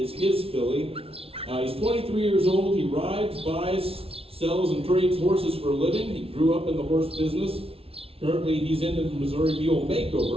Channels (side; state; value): left; late; 0.27 ms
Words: is his filly. He's 23 years old. He rides, buys, sells, and trades horses for a living. He grew up in the horse business. Currently, he's in the Missouri Mule